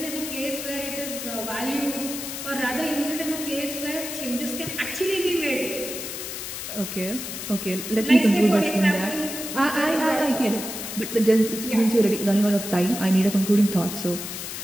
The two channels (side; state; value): left; noise; hiss, 7 dB below the sound